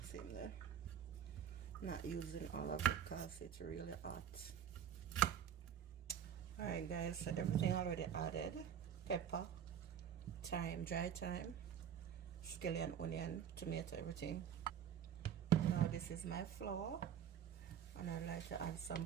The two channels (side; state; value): left; quieter; 8.8 dB